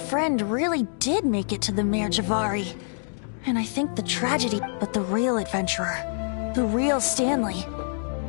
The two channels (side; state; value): right; silent; digital silence